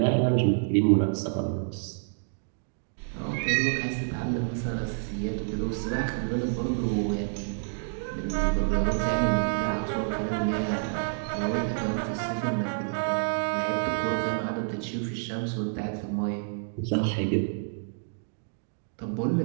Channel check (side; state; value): left; silent; digital silence